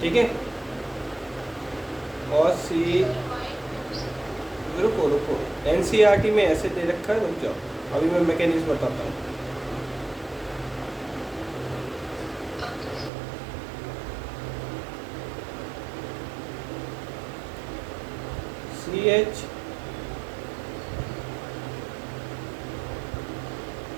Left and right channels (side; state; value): left; drops out; at 13.1 s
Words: ठीक है। और रुको NCERT में ऐसे दे रखा है, रुक जाओ, अभी मैं मैकेनिज्म बताता हूँ।